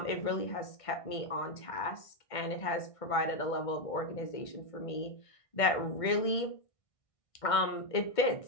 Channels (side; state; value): right; late; 1.5 ms